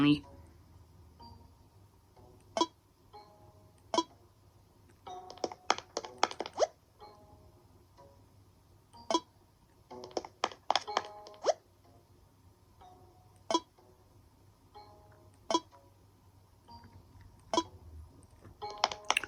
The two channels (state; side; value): identical; both; correlation 1.00